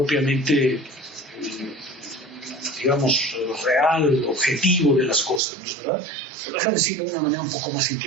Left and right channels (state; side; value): drops out; left; at 5.4 s